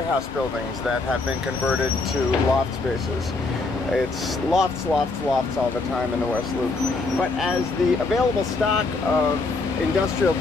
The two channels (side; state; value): right; quieter; 3.6 dB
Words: buildings that have been converted to loft spaces. It's lofts, lofts, lofts all the time in the West Loop. But as the available stock of industrial